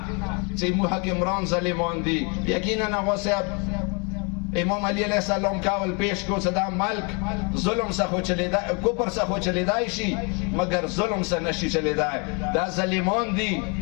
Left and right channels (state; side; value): quieter; right; 32.4 dB